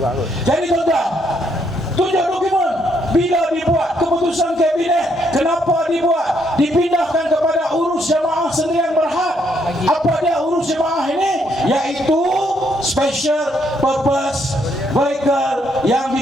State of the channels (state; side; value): normal; both; correlation 0.73